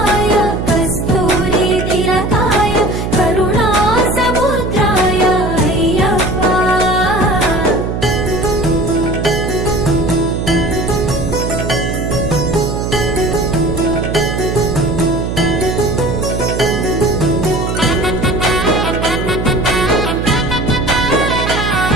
కస్తూరి తిలకాయ కరుణా సముద్రాయ అయ్యప్ప.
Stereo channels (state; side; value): noise; right; hum, 3 dB below the sound